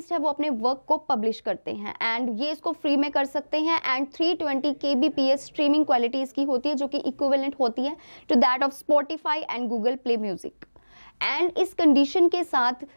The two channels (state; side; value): inverted; both; correlation -1.00